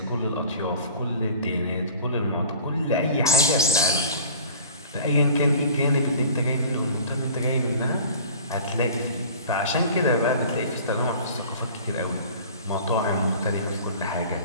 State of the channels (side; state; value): both; inverted; correlation -0.44